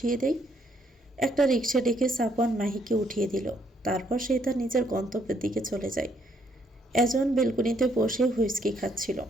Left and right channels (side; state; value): both; normal; correlation 0.70